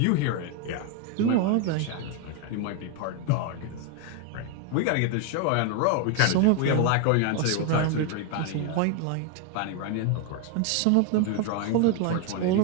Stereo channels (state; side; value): different; both; correlation 0.01